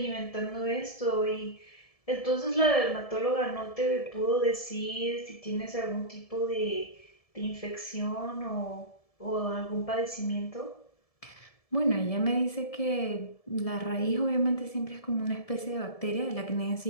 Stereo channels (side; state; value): right; late; 1.7 ms